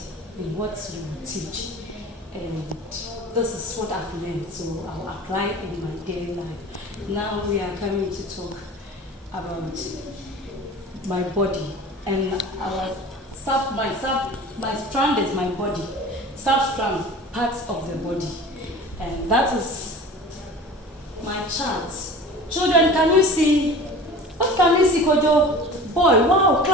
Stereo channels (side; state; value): both; normal; correlation 0.39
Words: in what you will teach. And this is what I've learned, so I'll apply it in my daily life. Now we are coming to talk about my body, and my strand is my body, sub-strand, parts of the body, and that is my chart. Children, can you see? What can you see, Kojo? Boy, wow,